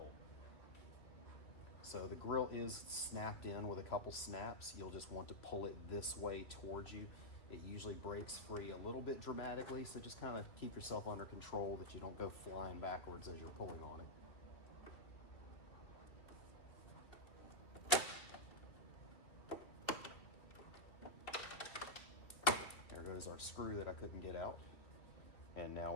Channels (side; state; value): right; late; 2.5 ms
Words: So the grill is snapped in with a couple snaps. You'll just want to pull it this way towards you. It usually breaks free a little bit dramatically, so just kind of keep yourself under control that you don't go flying backwards as you're pulling on it. There goes our screw that I couldn't get out. And now